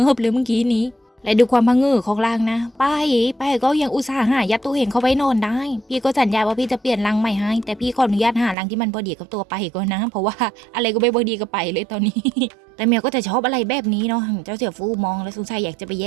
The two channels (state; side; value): drops out; left; at 8.6 s